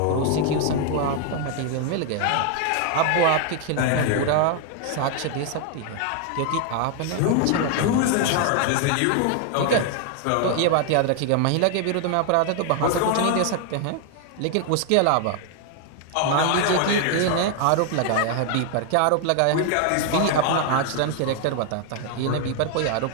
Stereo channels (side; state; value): both; different; correlation 0.00